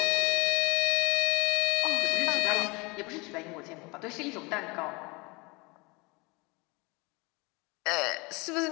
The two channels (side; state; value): right; quieter; 26.6 dB